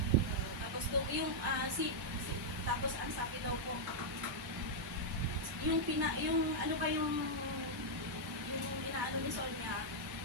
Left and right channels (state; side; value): normal; both; correlation -0.05